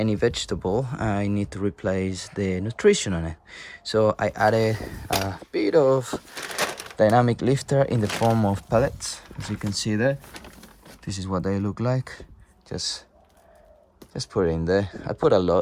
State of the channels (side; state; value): both; identical; correlation 1.00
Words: vegetable, I need to replace the nutrition on it. So I added a bit of dynamic lifter in the form of pellets. As you can see there, this is what they look like. Just put it in there. I put a